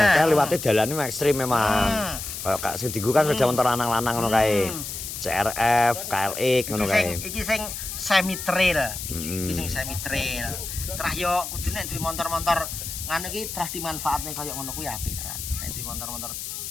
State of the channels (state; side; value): noise; left; hiss, 7 dB below the sound